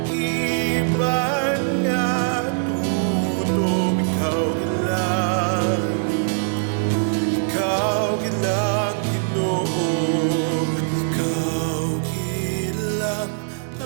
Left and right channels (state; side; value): silent; left; 64 dB below the other